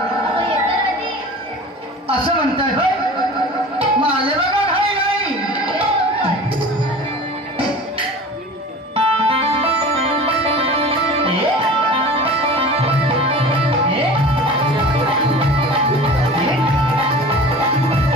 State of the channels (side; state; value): both; normal; correlation 0.38